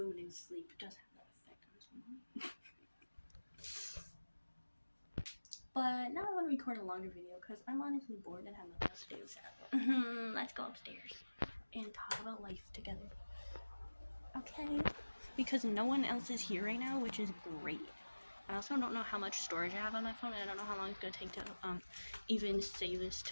and sleep does have that effect on someone. But now I want to record a longer video because I'm honestly bored and have nothing else to do. So let's go upstairs and talk about life together. Okay? Because no one else is here right now, which is great. I also don't know how much storage I have on my phone, and I don't know how long it's going to take to even save this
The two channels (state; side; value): inverted; both; correlation -1.00